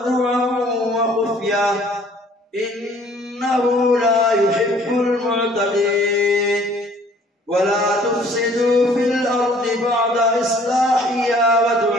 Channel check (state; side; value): normal; both; correlation 0.56